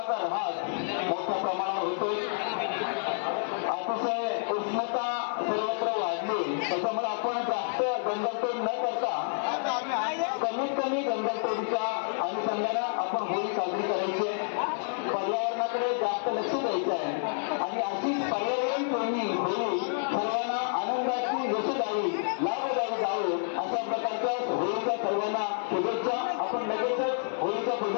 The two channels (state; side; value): silent; right; 58 dB below the other